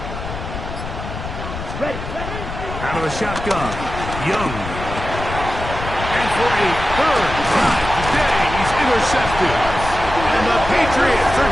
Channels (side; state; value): left; noise; rumble, 8 dB below the sound